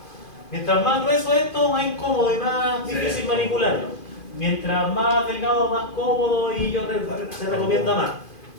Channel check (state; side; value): late; right; 2.5 ms